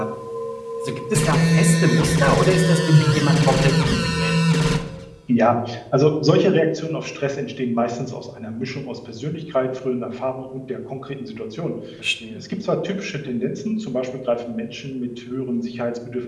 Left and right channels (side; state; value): both; identical; correlation 1.00